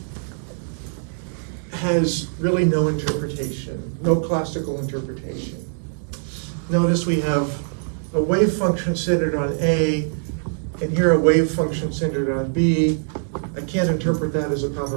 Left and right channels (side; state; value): left; silent; 64 dB below the other